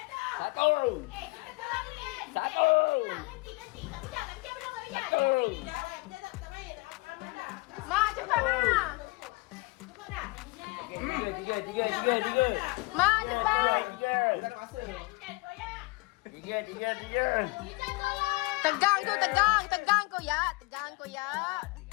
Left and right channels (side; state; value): right; quieter; 25.0 dB